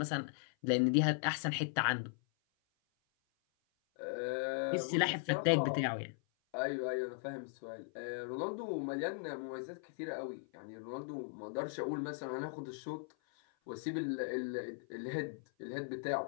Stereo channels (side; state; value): right; silent; 52 dB below the other